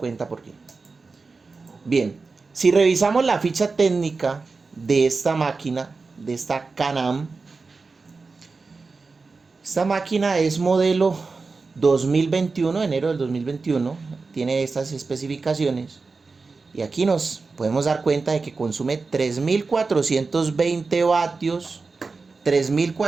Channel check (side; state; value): left; quieter; 4.2 dB